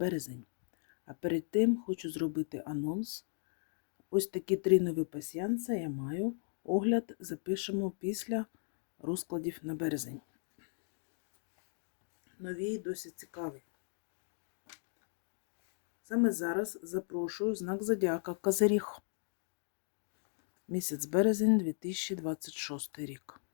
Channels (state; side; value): silent; right; digital silence